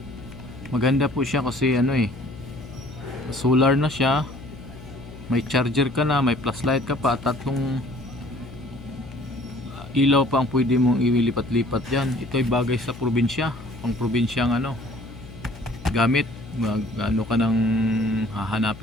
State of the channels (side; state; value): left; noise; hum, 16 dB below the sound